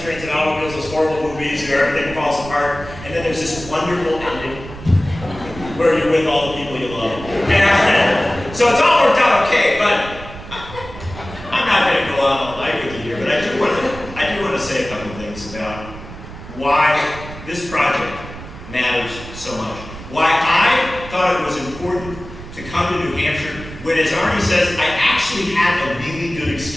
trains, and automobiles, those horrible movies where everything falls apart, and then there's this wonderful ending where you're with all the people you love. And so it's all worked out okay, but I'm not going to go on all night with you here, but I do want to say a couple of things about why this project matters so much. Why I thought it was important to come to New Hampshire when, as Arnie says, I actually had a really good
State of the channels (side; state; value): right; noise; rumble, 14 dB below the sound